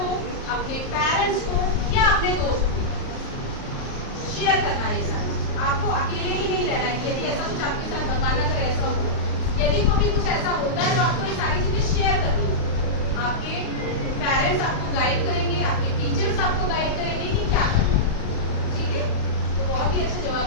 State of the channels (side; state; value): right; late; 38 ms